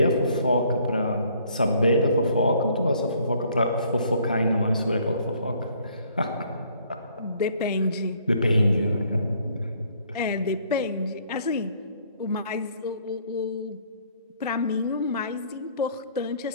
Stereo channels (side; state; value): both; inverted; correlation -0.62